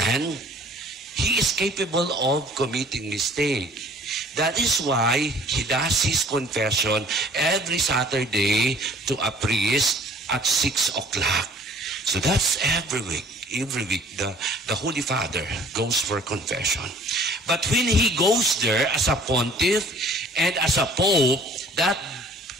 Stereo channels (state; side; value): normal; both; correlation 0.53